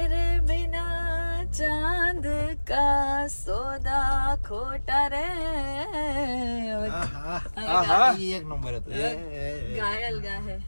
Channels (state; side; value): inverted; both; correlation -1.00